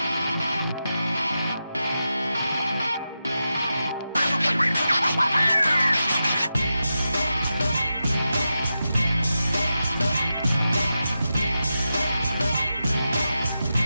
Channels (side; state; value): both; inverted; correlation -0.90